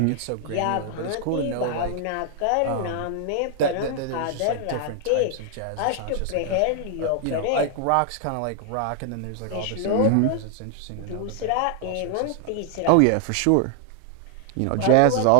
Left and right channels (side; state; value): both; different; correlation -0.01